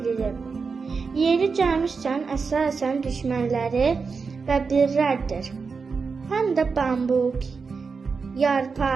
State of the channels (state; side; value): quieter; left; 5.0 dB